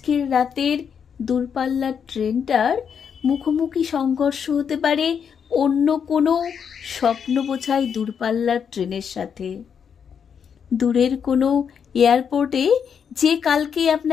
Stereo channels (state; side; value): quieter; right; 7.2 dB